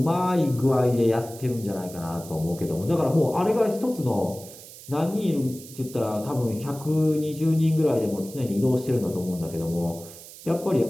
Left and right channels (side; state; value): right; noise; hiss, 17 dB below the sound